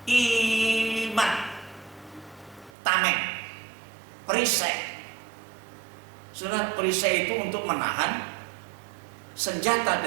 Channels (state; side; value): drops out; left; at 2.7 s